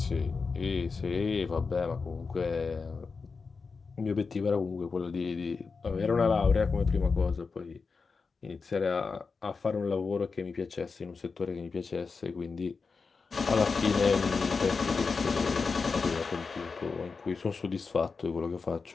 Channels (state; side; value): quieter; right; 4.7 dB